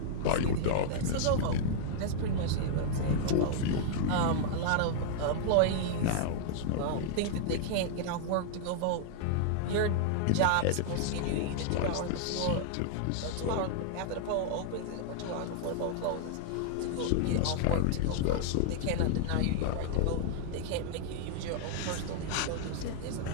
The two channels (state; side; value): different; both; correlation -0.01